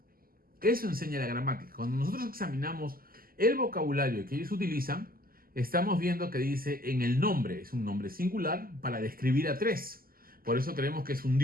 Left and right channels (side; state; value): left; late; 0.42 ms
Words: Eso enseña la gramática. Cuando nosotros examinamos el vocabulario que ellos utilizan, estamos viendo que dice en el nombre, es un nombre singular para describir a tres. Por eso creemos que es un